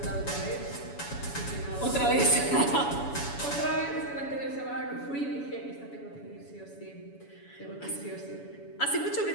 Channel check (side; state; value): right; late; 7.1 ms